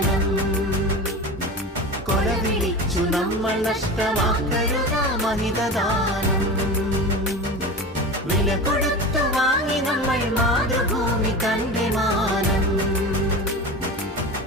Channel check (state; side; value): normal; both; correlation 0.29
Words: കൊല വിളിച്ചു നമ്മൾ നഷ്ടമാക്കരുത മഹിതദാനം വില കൊടുത്തു വാങ്ങി നമ്മൾ മാതൃഭൂമി തന്റെ മാനം